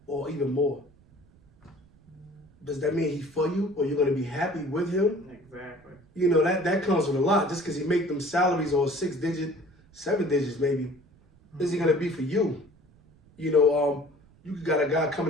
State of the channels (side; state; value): right; noise; rumble, 29 dB below the sound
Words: or even more, does that mean he's for you, or you're going to be happy with him? Exactly. You know, that comes with a lot. Just because he make them salaries or 6 digit, 7 digits maybe, is he going to be for you? You know, you got a guy